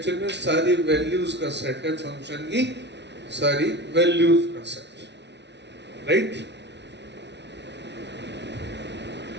में सारी वैल्यूज का सेट है, फंक्शन की सारी वैल्यूज का सेट, राइट।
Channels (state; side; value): late; left; 0.50 ms